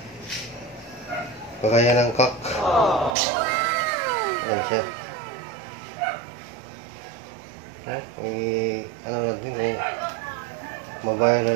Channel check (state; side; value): drops out; left; at 3.2 s